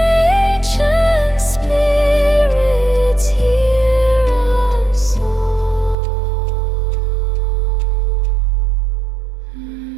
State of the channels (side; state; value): left; drops out; at 6.0 s